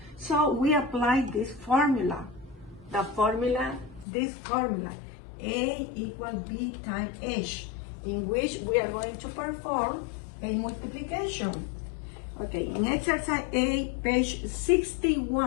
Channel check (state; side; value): drops out; right; at 4.0 s